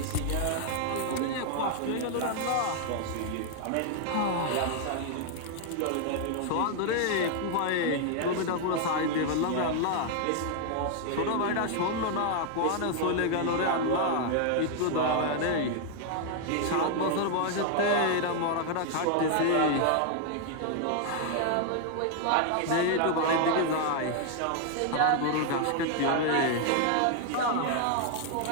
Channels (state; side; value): different; both; correlation 0.00